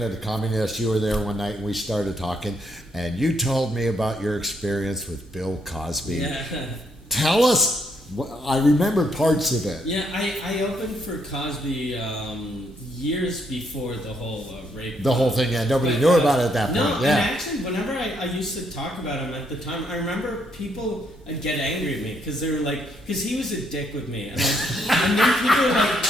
at the Comedy Nest, you were there one night and we started talking, and you told me about your experience with Bill Cosby. Yeah. Tell us. I remember parts of it. Yeah, I opened for Cosby years before the whole rape. The whole thing, yeah. Nobody knew about it at that point. No, yeah. and actually, whenever I used to talk about him at the time, I remember people would get angry at me because they were like, because he was a dick with me. And then people were like,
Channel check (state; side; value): normal; both; correlation 0.74